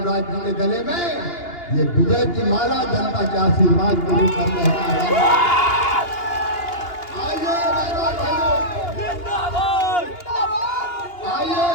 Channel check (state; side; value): late; right; 2.8 ms